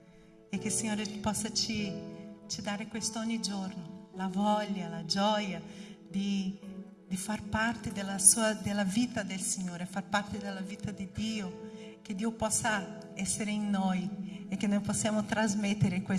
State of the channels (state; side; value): identical; both; correlation 1.00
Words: e che il Signore possa ci dare questo ogni giorno, la voglia, la gioia di far parte della vita del Signore, far parte della vita di Dio, che Dio possa essere in noi e che noi possiamo trasmettere